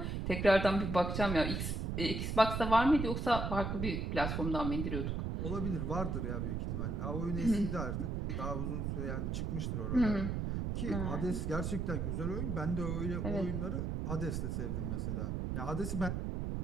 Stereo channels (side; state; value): right; noise; rumble, 1 dB below the sound